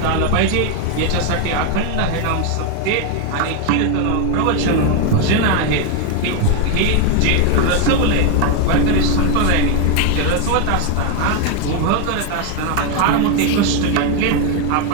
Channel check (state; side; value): different; both; correlation 0.01